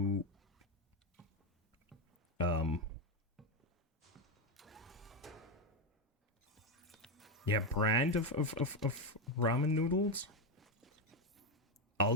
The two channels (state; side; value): normal; both; correlation 0.08